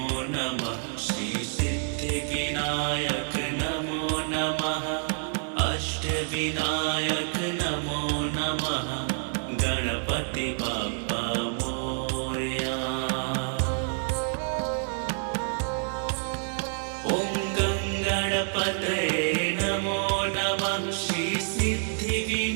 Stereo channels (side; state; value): left; silent; digital silence